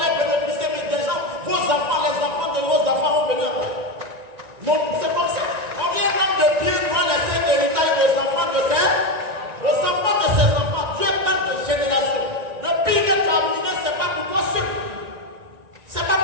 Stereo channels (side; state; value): left; late; 1.9 ms